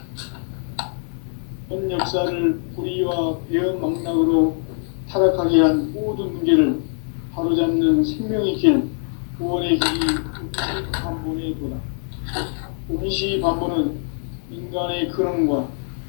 현 역사를 불의와 배은 망락으로 타락한 타락하게 한 모든 문제를 바로잡는 생명의 길, 구원의 길이 운시반본의 도다. 운시반본은 인간의 근원과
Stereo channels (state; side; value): silent; right; 58 dB below the other